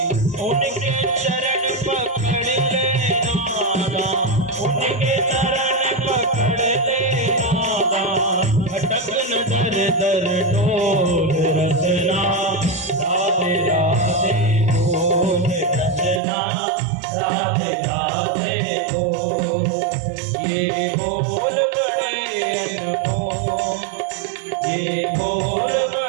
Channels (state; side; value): drops out; left; at 16.2 s